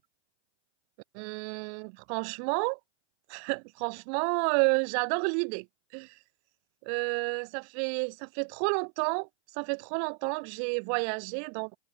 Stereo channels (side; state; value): left; silent; 57 dB below the other